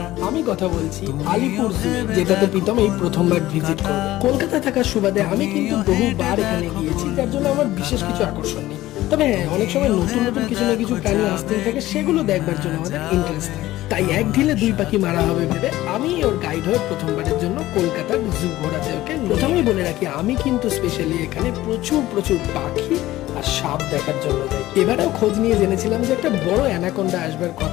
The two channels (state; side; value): quieter; right; 16.0 dB